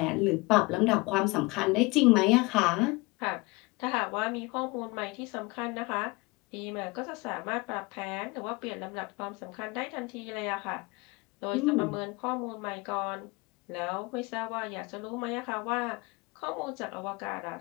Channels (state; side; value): quieter; right; 25.1 dB